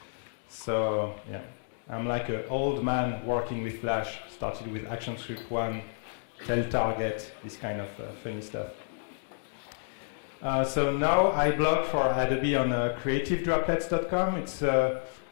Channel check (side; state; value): right; silent; digital silence